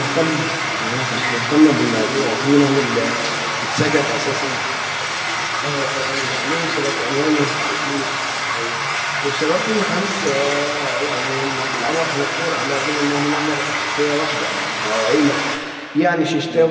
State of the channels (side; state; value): both; identical; correlation 1.00